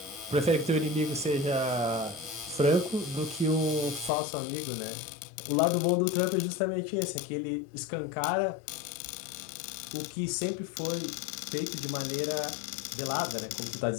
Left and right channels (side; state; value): right; drops out; at 4.1 s